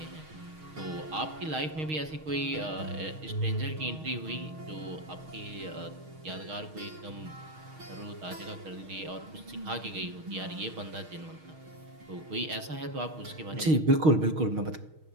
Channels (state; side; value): late; left; 6.4 ms